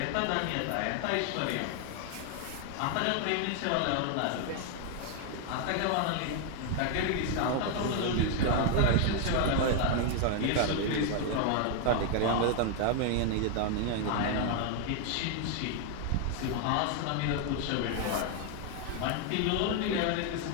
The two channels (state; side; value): different; both; correlation 0.00